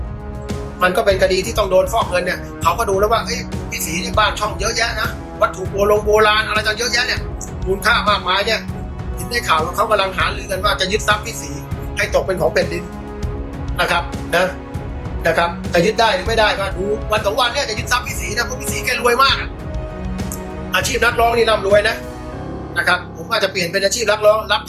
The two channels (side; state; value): both; identical; correlation 1.00